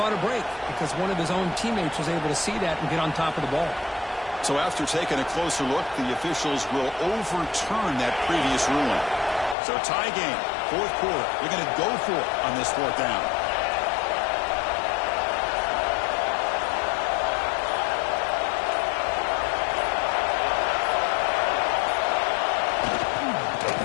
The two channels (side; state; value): right; drops out; at 9.6 s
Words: a break because one of his own teammates was able to see that and get on top of the ball. So after taking a closer look, the officials will overturn that previous ruling. So tie game, fourth quarter. They're going to go for it on this fourth down.